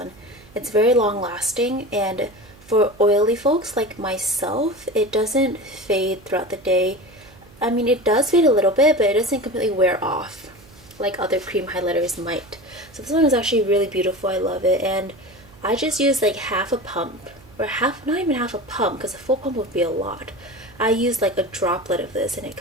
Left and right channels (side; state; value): right; noise; hum, 24 dB below the sound